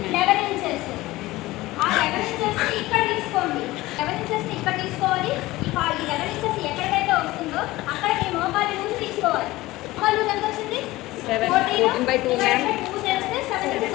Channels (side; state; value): right; quieter; 18.5 dB